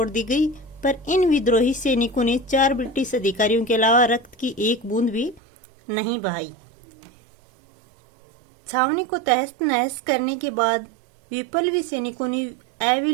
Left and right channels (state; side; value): drops out; left; at 5.4 s